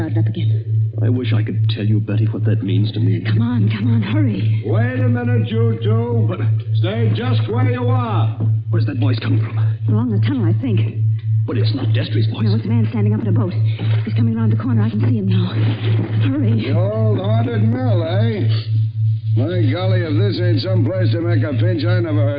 up again. I wish I could tell you, Betty, what that means to me. Come on, hurry. Wait a minute, you two. But stay just where you are. Where's that voice coming from? Along the tunnel, I think. But it's not Destry's voice. No, it's a man standing up in a boat. He's coming around the corner. I can see him now. Hurry. The old haunted mill, eh? My golly, if this ain't some place to make a pinch, I never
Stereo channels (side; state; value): both; identical; correlation 1.00